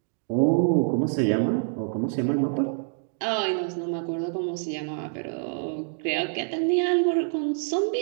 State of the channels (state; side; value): silent; left; digital silence